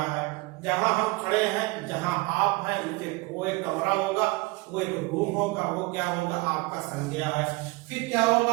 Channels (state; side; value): quieter; left; 24.2 dB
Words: है। जहां हम खड़े हैं, जहां आप हैं, वो एक कमरा होगा, वो एक रूम होगा, वो क्या होगा, आपका संज्ञा है। फिर क्या होगा,